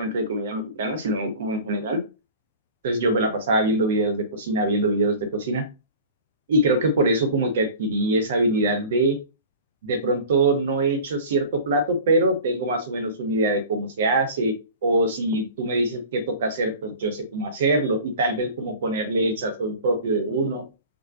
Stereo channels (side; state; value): both; inverted; correlation -0.40